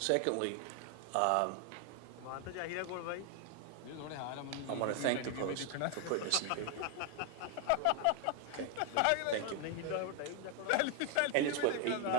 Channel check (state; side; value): different; both; correlation 0.00